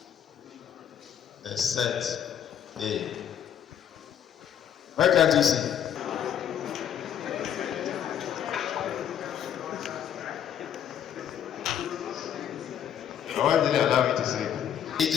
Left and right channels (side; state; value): right; quieter; 9.5 dB